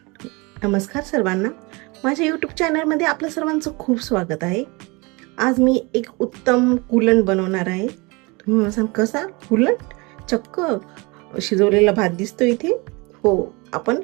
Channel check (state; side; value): quieter; left; 26.7 dB